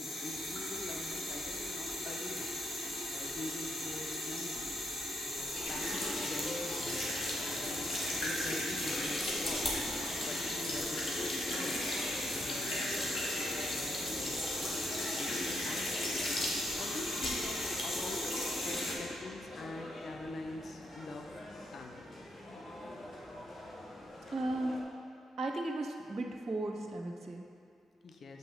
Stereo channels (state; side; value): normal; both; correlation 0.78